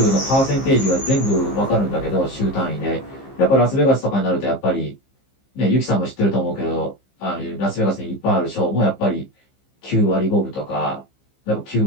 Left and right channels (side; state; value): right; late; 15 ms